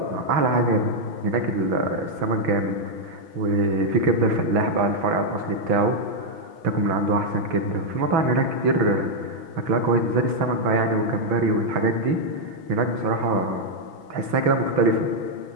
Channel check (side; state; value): left; late; 6.0 ms